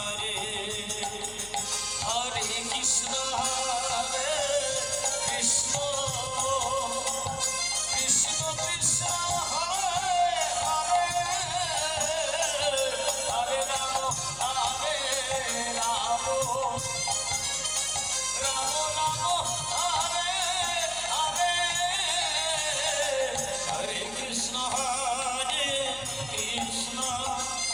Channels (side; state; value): left; noise; hum, 19 dB below the sound